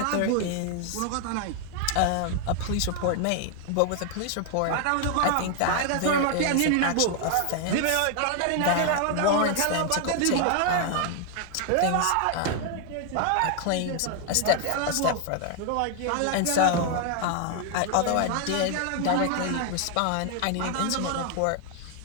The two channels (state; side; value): different; both; correlation 0.00